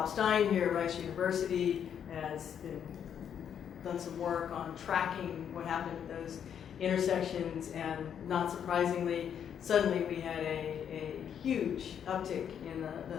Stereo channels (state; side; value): quieter; right; 8.5 dB